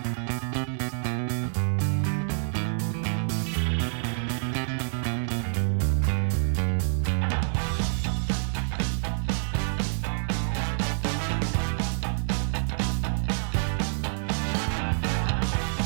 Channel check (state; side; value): silent; left; 60 dB below the other